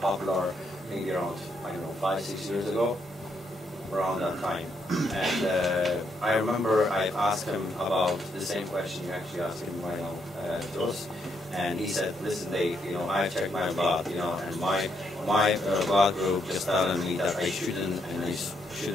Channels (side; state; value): both; normal; correlation 0.76